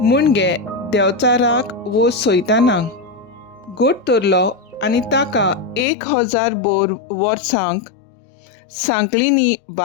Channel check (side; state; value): right; drops out; at 5.9 s